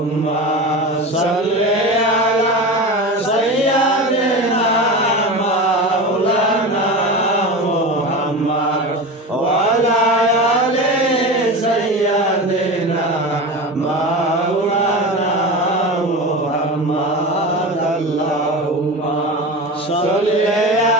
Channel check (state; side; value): normal; both; correlation 0.27